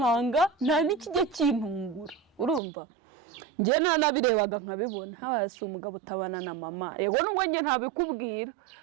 nta n'ikijya kintungura urumva njye nanabirebaga nkabibona hasi umugabo utabana na mama yego nubwo njye ntabikubwira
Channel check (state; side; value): drops out; left; at 2.6 s